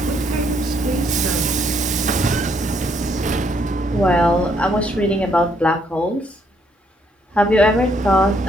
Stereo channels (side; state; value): both; normal; correlation 0.70